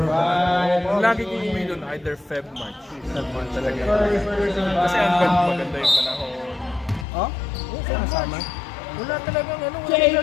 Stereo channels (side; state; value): right; drops out; at 7.1 s